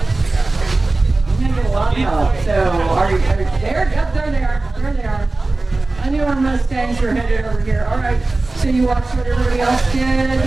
You're gonna get a lot of help. So, are you there? Yep, there they are. There they are. I knew our Mustangs were headed over here. All right, so you watched what everybody else did.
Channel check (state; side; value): quieter; left; 3.2 dB